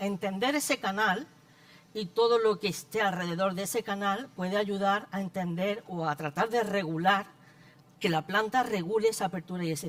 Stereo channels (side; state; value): both; identical; correlation 1.00